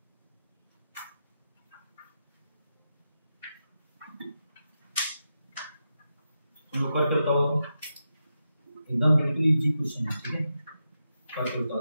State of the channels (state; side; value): inverted; both; correlation -0.87